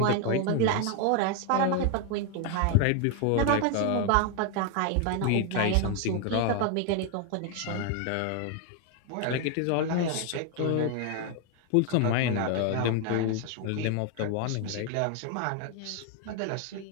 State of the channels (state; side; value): different; both; correlation 0.01